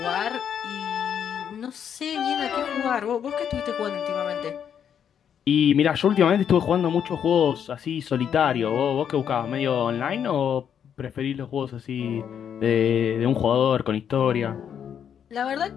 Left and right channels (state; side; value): quieter; right; 8.5 dB